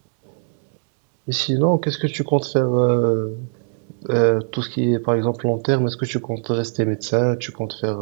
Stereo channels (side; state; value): left; silent; digital silence